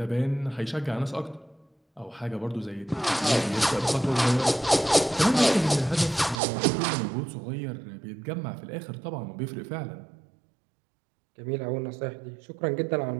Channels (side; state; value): left; drops out; at 6.4 s